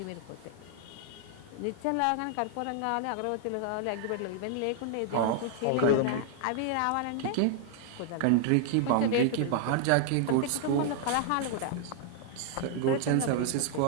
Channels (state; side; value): different; both; correlation -0.01